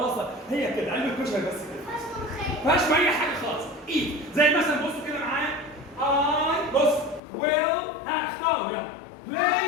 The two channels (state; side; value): drops out; right; at 7.2 s